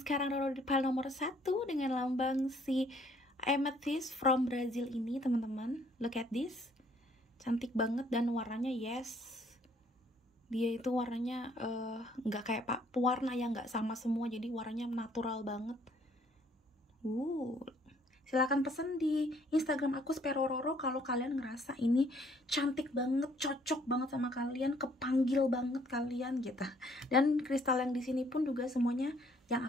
Roro di pile nomor 1 dengan lambang si Amethyst from Brazil ini teman-teman. Look at this, cantik banget dan warnanya yes, dia itu warnanya nggak kayak pewarna yang nggak sama semua, jadi warnanya natural banget. Silahkan pesen di Instagram aku Spero Roro kalau kalian ngerasa ini cantik banget, cocok banget sama kalian, kepanggil banget kalian gitu. Dan kristal yang di sini pun juga semuanya yang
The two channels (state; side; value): normal; both; correlation 0.63